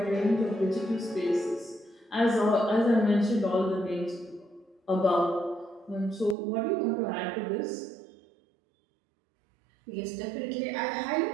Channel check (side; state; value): left; drops out; at 6.4 s